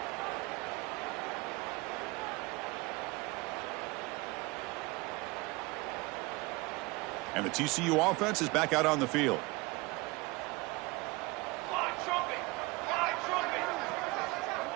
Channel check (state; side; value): quieter; left; 24.2 dB